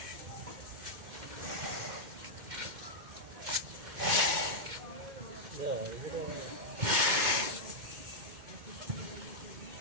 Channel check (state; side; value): late; left; 2.1 ms